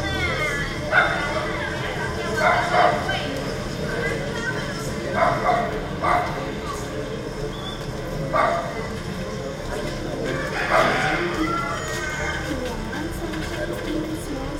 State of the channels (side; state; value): both; identical; correlation 1.00